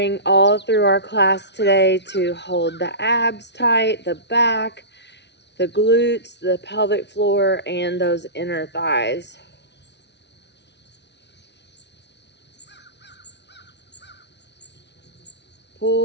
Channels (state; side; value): late; right; 0.50 ms